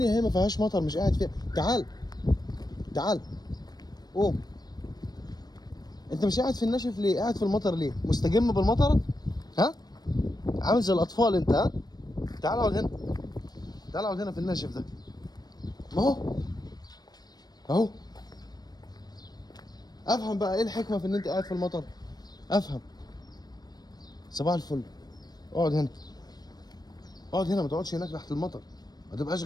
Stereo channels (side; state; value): right; late; 0.19 ms